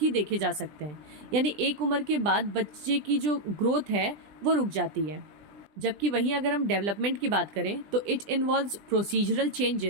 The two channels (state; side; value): late; left; 20 ms